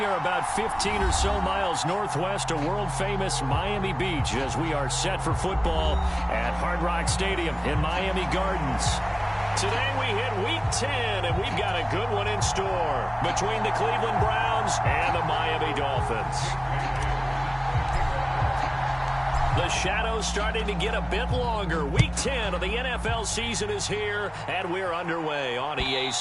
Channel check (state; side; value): identical; both; correlation 1.00